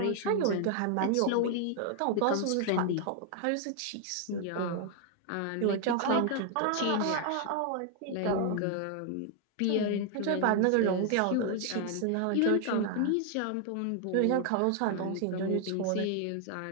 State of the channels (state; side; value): different; both; correlation 0.00